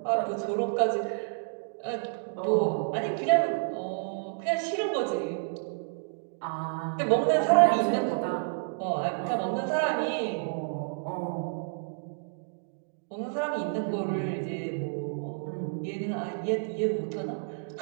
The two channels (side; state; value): left; silent; digital silence